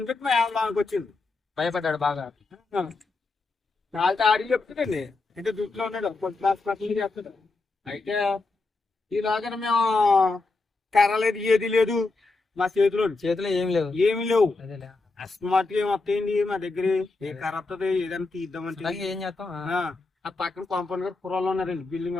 పెట్టి మా లోనికి వచ్చింది. భయపడ్డాడు బాగా. వాళ్ళతో ఆడికి చెప్తుందండి, అంటే దుట్లో ఉన్నాడు, కొద్ది చేస్తాడు. అయితే ఈలాగా మేము కర్ర లేదు, ఏది లేదు మా చేతిలో ఏమి లేవు. అస్మాట్ ఏం వస్తాయండి మా దగ్గర, ఏ కర్ర వస్తుంది ఏదైనా తీద్దామంటే. ఏం చేస్తాం, ఆ పక్కన కాంపౌండ్ గారు పురాలు ఉన్నారండి. బిల్డింగ్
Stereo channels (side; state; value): right; quieter; 3.6 dB